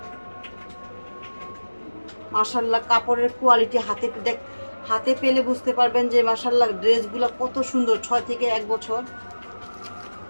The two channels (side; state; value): both; inverted; correlation -1.00